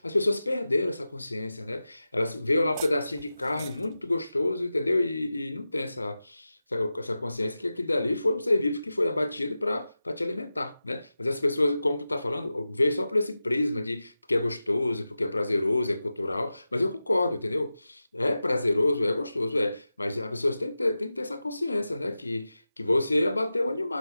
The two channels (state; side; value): inverted; both; correlation -0.94